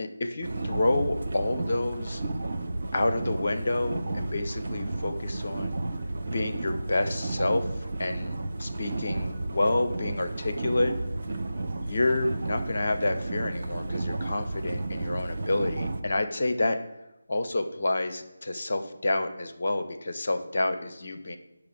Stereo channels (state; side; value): inverted; both; correlation -0.94